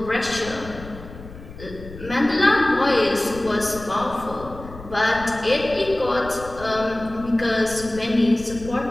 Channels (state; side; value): noise; left; rumble, 15 dB below the sound